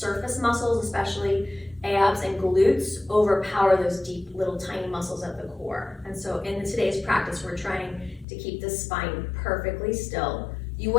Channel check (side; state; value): right; drops out; at 8.2 s